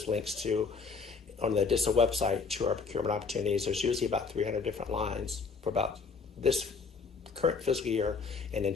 links to on the DISA website to our procurement opportunities. There's usually about 300 different lines for about this current fiscal year and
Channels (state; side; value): quieter; right; 4.9 dB